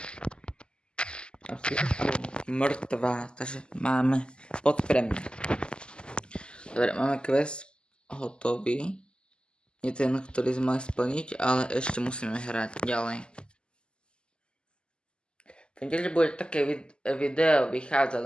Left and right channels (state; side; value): late; right; 0.049 ms